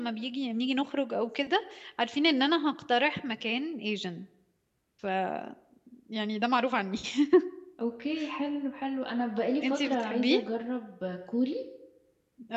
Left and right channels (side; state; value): both; identical; correlation 1.00